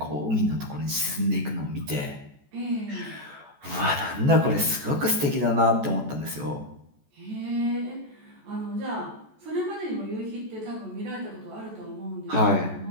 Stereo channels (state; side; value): late; left; 14 ms